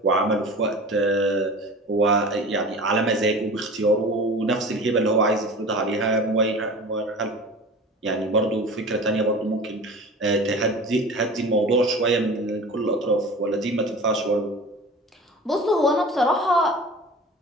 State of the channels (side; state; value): both; normal; correlation 0.37